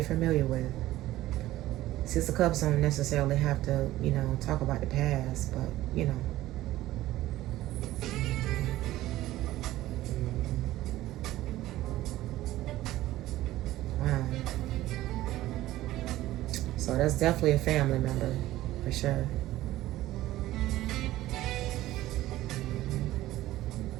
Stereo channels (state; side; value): quieter; left; 15.6 dB